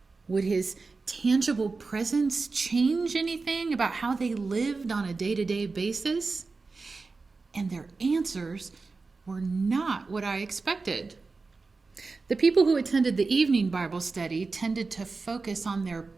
Would his tangible presence change anything about how they lived on a day-to-day basis? And their answers were not what I expected. The people who attended the evening Bible study tended to focus on their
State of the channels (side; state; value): left; quieter; 4.0 dB